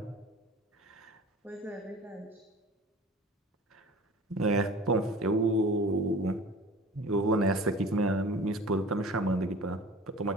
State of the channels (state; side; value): normal; both; correlation 0.41